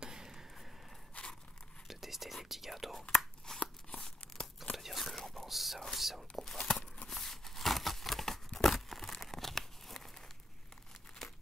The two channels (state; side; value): normal; both; correlation 0.77